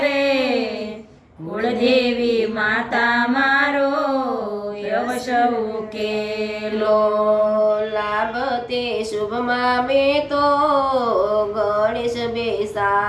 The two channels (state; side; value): identical; both; correlation 1.00